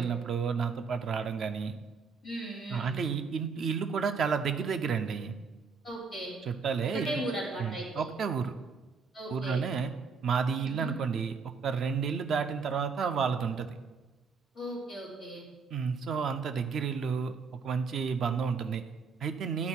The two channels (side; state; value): left; quieter; 5.3 dB